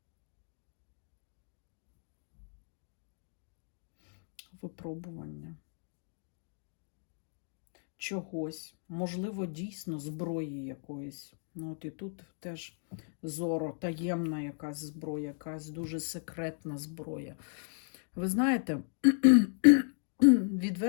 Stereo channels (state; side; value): silent; right; 55 dB below the other